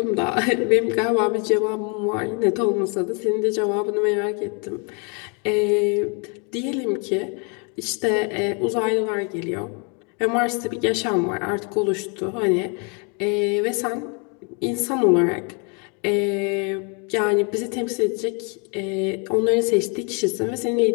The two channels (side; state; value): right; quieter; 35.8 dB